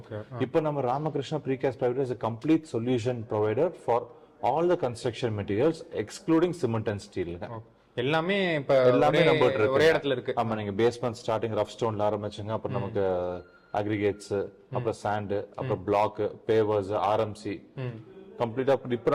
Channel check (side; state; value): both; identical; correlation 1.00